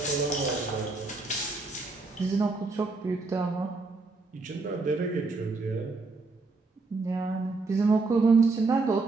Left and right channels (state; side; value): quieter; left; 3.7 dB